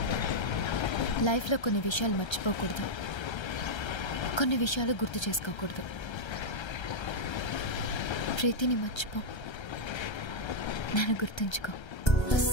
లైఫ్లో కొన్ని విషయాలు మర్చిపోకూడదు, కొన్ని విషయాలు గుర్తు చేసుకోకూడదు. ప్రీతిని మర్చిపో, నన్ను గుర్తుంచుకో.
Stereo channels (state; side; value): late; right; 1.3 ms